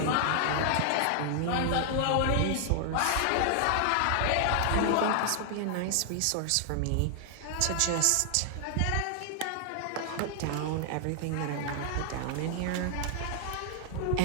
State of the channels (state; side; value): different; both; correlation 0.00